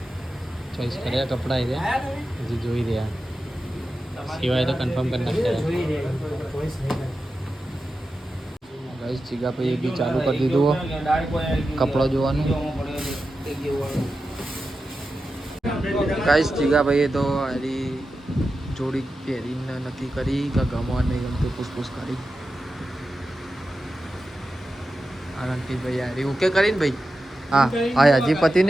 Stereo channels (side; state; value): both; normal; correlation 0.91